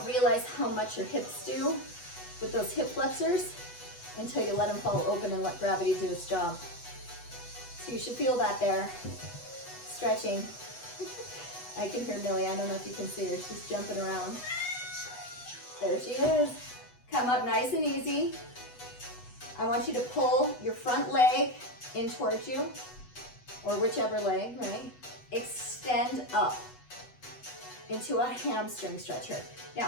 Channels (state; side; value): late; right; 8.1 ms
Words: realize how much your hips do with those hip flexors until you let them fall open and let gravity do its job. So you should feel that there. Stretching. I can hear Millie. I don't know if you can see her. She's jumping around. There she is. Come up nice and easy. I want you to pull your front leg in towards you, or whichever leg, right? Extend up into a hamstring stretcher.